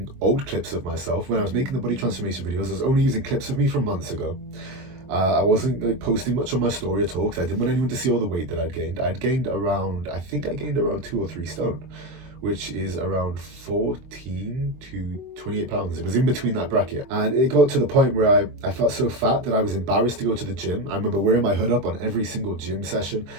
old clips of myself. When I was making the body transformation videos, I was only using clips of me from months ago. I wasn't like posting much on my story at all because I didn't want anyone to see all the weight that I'd gained. I gained around 2 or 3 stone, which is around 14 to 28 pounds. It was in between that bracket. And it got to the point where I felt so fat that I was embarrassed to go to the gym. I remember wearing my hood up on every single gym session,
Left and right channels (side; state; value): left; late; 23 ms